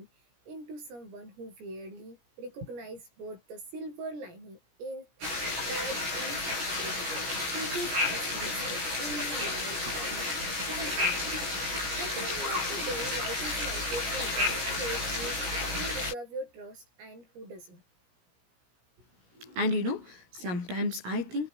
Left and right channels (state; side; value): late; left; 17 ms